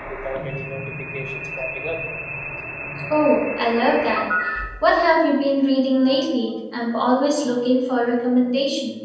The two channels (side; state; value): both; identical; correlation 1.00